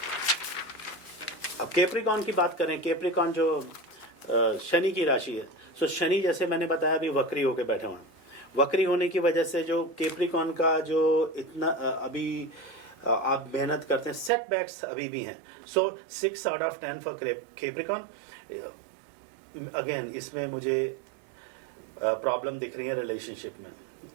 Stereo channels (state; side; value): drops out; left; at 14.3 s